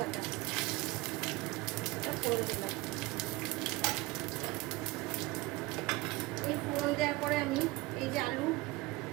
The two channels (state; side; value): quieter; left; 21.7 dB